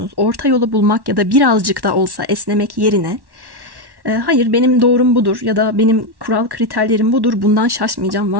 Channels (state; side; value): late; left; 1.1 ms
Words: Orta yolu bulmak ya da birazcık da olsa esnemek yerine hayır benim doğrum budur ya da benim kural kriterlerim budur, bundan şaşmayacağım,